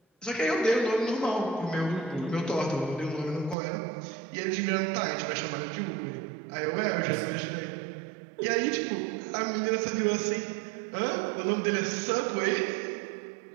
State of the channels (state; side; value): drops out; left; at 3.6 s